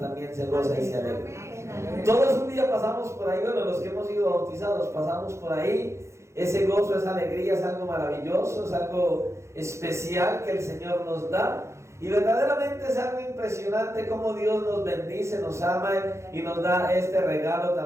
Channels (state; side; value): late; left; 0.14 ms